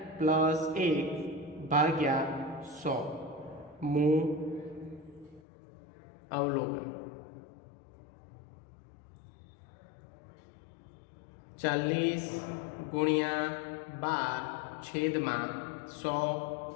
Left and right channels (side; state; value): right; drops out; at 5.4 s